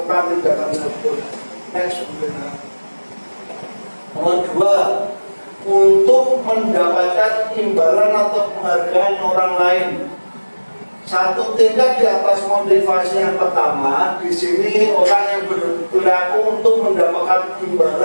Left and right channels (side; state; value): both; inverted; correlation -1.00